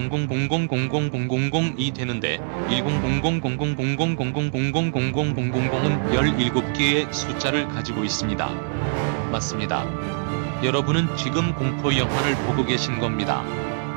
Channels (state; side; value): silent; left; digital silence